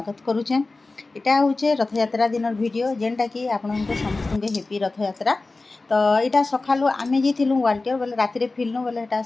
करुचे। इटा हूँ रथ यात्रा दिन वीडियो जेनटा कि आपन समस्त हेपी रथ यात्रा। तो यहाँ सकालू आम जाइलु वाल्टियर बोले राति फिल्नु बोले यहाँ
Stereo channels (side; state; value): right; quieter; 3.4 dB